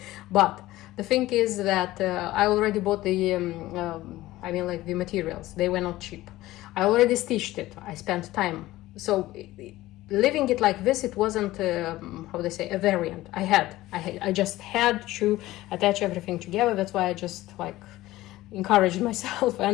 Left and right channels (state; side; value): quieter; right; 16.8 dB